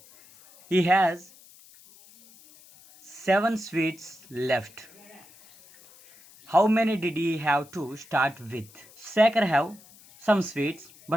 He has 7 sweets left. How many did he have to start with? Shekhar have some sweets,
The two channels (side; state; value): left; noise; hiss, 24 dB below the sound